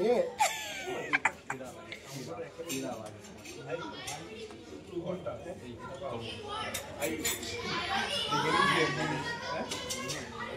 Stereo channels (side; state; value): both; identical; correlation 1.00